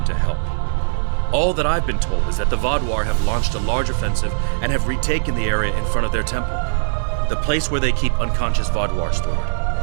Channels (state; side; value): silent; left; digital silence